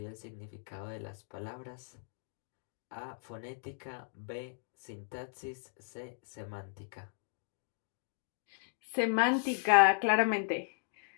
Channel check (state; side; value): silent; right; digital silence